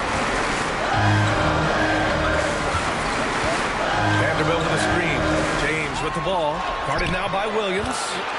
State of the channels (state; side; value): identical; both; correlation 1.00